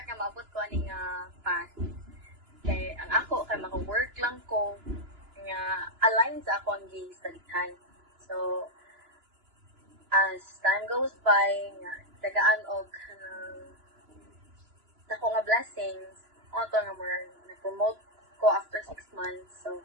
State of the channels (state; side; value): late; left; 2.9 ms